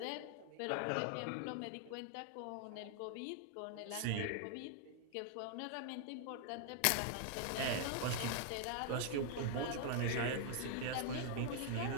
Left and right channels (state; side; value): different; both; correlation 0.00